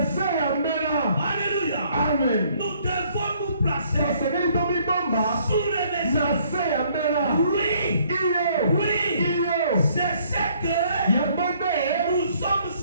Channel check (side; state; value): both; inverted; correlation -0.63